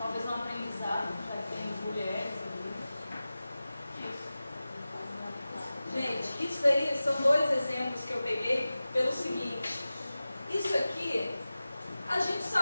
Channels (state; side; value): inverted; both; correlation -0.95